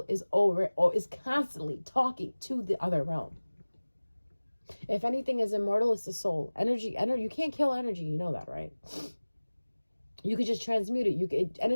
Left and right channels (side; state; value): both; inverted; correlation -1.00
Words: is constantly talking to the other realm. If anything is immortal, it's the soul. Energy, you can't kill energy. You know that, right? You could just transmute it.